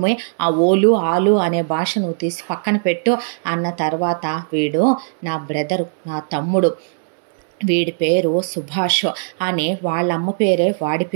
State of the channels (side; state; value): left; silent; 67 dB below the other